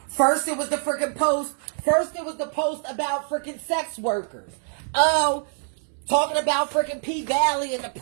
First it was the freaking post. First it was the post about freaking sex workers. Oh, talking about freaking P Valley and the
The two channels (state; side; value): silent; left; 62 dB below the other